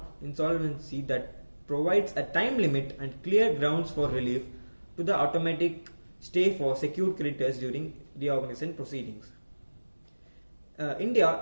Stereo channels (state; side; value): inverted; both; correlation -1.00